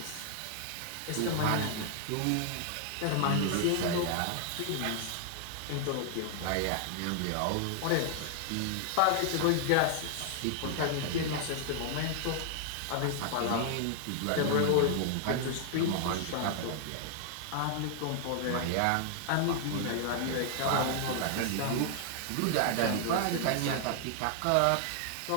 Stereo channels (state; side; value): different; both; correlation 0.00